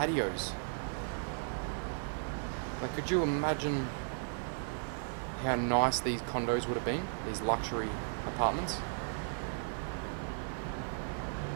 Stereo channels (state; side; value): silent; left; 54 dB below the other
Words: Like, could you imagine how nice these condos would have been? These luxury apartments.